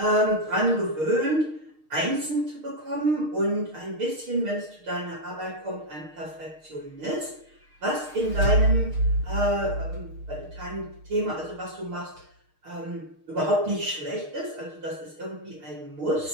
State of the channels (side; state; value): left; late; 6.5 ms